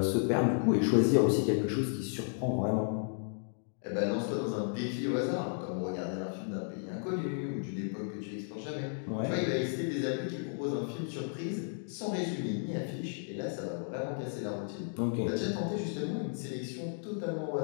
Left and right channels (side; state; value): right; silent; digital silence